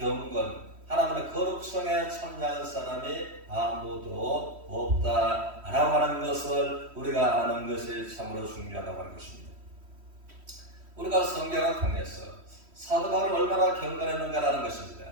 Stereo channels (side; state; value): left; late; 3.1 ms